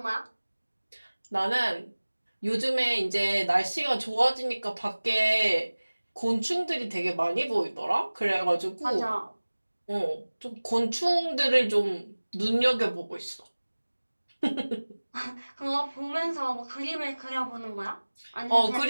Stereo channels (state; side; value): inverted; both; correlation -1.00